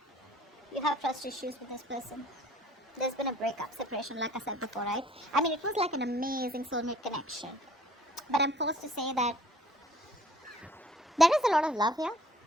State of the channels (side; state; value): both; normal; correlation 0.56